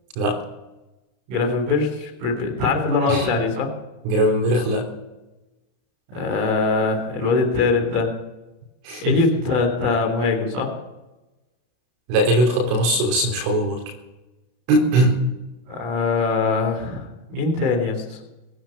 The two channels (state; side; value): late; left; 32 ms